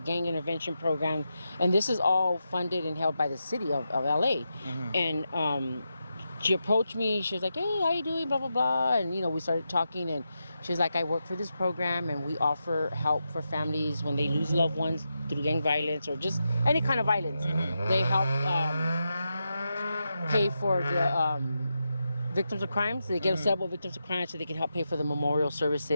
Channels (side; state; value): both; inverted; correlation -0.87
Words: gang intervention program. And this is all funded and held by the city of LA. Mm-hmm. And she approached me. She was like, hey, how you doing? Blah, blah, blah. And, you know, we started talking. And she was like, I work for this program, and we offer help for families when they lose loved ones through gang violence or just any kind of violence. Mm-hmm. They help pay for the victims of crime. So they get several victims of crime so they can help pay for the memorial